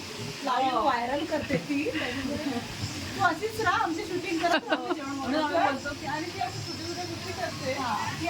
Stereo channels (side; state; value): both; identical; correlation 1.00